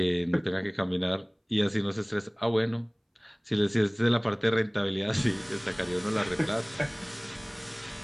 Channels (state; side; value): identical; both; correlation 1.00